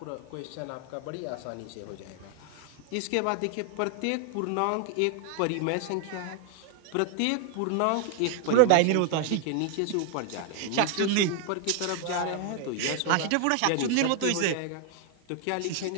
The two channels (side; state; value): both; different; correlation 0.00